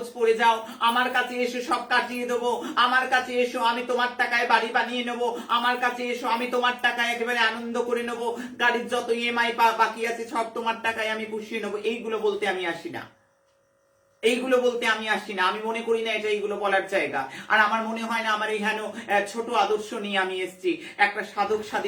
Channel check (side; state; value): both; identical; correlation 1.00